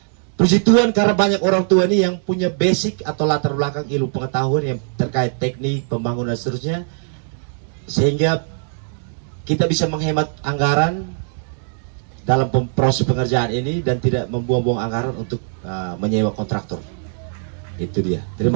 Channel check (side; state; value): left; silent; digital silence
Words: Puji Tuhan karena banyak orang tua ini yang punya basic atau latar belakang ilmu pengetahuan yang terkait teknik, pembangunan dan seterusnya, sehingga kita bisa menghemat anggaran dalam proses pengerjaan ini dan tidak membuang-buang anggaran untuk menyewa kontraktor. Itu dia.